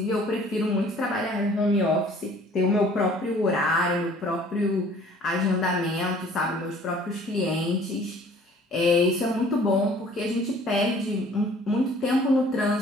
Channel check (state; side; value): normal; both; correlation 0.53